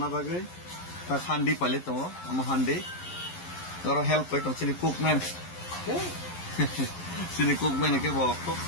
बागै ता हांडी पाले तो हम हांडी जरा हेल्प पाइ तो सिनि कुकमैन के बको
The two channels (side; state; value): right; late; 11 ms